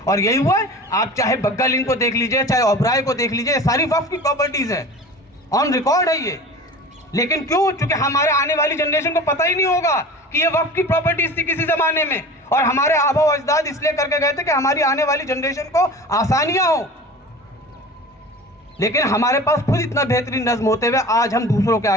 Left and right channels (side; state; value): both; normal; correlation 0.37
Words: اور یہی ہوا ہے. آپ چاہے بگل ان کو دیکھ لیجئے, چاہے اوبرائے کو دیکھ لیجئے, ساری وقف کی پراپرٹیز ہیں, آن ریکارڈ ہے یہ. لیکن کیوں؟ چونکہ ہمارے آنے والی جنریشن کو پتہ ہی نہیں ہوگا کہ یہ وقف کی پراپرٹیز تھی کسی زمانے میں, اور ہمارے آبا و اجداد اس لیے کر کے گئے تھے کہ ہماری آنے والی جنریشن کو آسانیاں ہوں. لیکن ہمارے پاس خود اتنا بہترین نظم ہوتے ہوئے آج ہم دوسروں کے